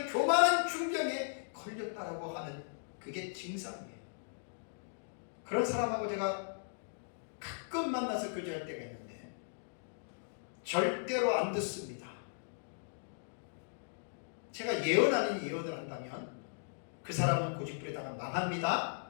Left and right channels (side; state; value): right; silent; digital silence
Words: 교만한 중병에 걸렸다라고 하는 그게 증상이에요. 그런 사람하고 제가 가끔 만나서 교제할 때가 있는데 절대로 안 듣습니다. 제가 예언 아닌 예언을 한다면 그 사람은 고집부리다가 망합니다.